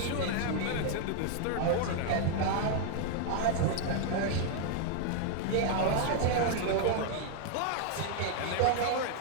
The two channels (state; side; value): different; both; correlation 0.00